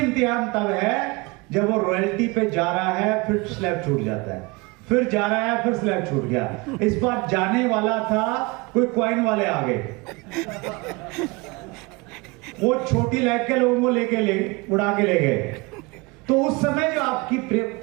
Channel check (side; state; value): left; quieter; 25.6 dB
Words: तब है जब वो रॉयल्टी पे जा रहा है, फिर स्लैब छूट जाता है, फिर जा रहा है, फिर स्लैब छूट गया। इस बार जाने वाला था, कोई कॉइन वाले आ गए, वो छोटी लैग के लोगों को उड़ा के ले गए। तो उस समय जो आपकी